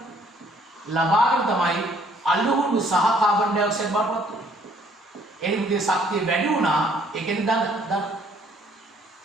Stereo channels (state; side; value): normal; both; correlation 0.62